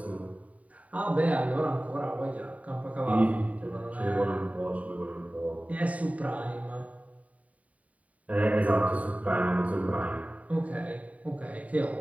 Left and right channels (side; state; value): left; late; 0.069 ms